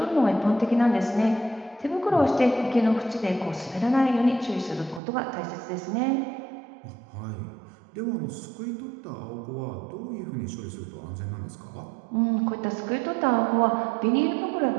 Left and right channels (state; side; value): drops out; left; at 5.0 s